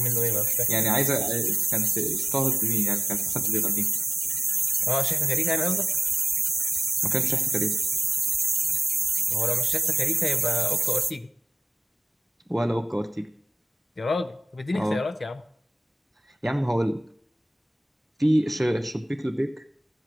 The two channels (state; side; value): normal; both; correlation 0.94